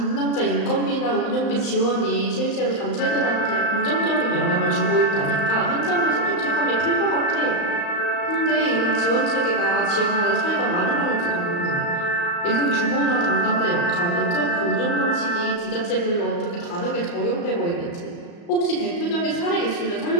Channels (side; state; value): right; late; 35 ms